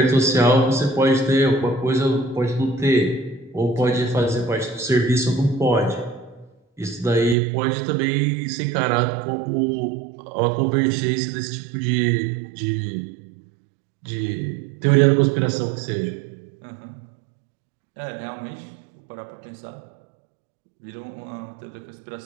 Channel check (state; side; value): drops out; left; at 7.4 s